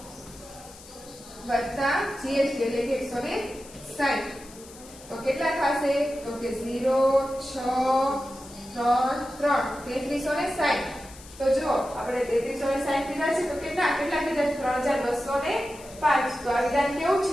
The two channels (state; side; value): noise; left; hiss, 19 dB below the sound